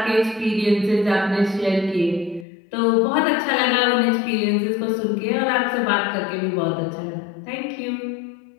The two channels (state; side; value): drops out; right; at 2.5 s